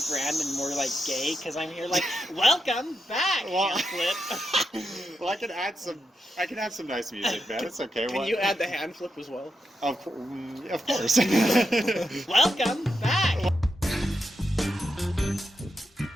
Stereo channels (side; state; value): both; normal; correlation 0.85